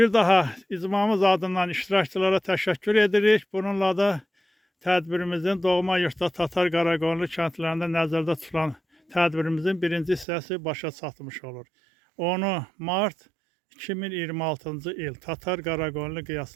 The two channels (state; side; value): drops out; left; at 10.2 s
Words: daha icmamız adından iştirakçılara təşəkkür edirik. Bununla da tədbirimizin doğma yurtda Tatar Qaraqoyunlu kəndlərində nəzərdə tutulan tədbirimizin birinci hissəsi başa çatmış olur. 10 mart 2026-cı il Tatar Qaraqoyunlu